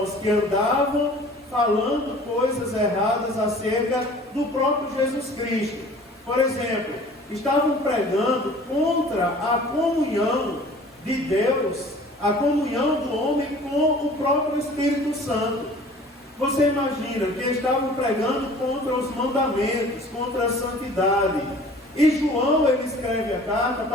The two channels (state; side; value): normal; both; correlation 0.47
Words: que andavam falando coisas erradas acerca do próprio Jesus Cristo. Por exemplo, estavam pregando contra a comunhão de Deus, a comunhão do homem com o próprio Espírito Santo. Você imagina que estavam pregando contra os mandamentos, contra a santidade. E João, ele escreve a carta